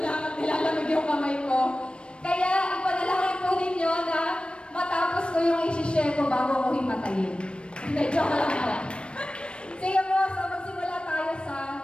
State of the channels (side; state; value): right; late; 0.057 ms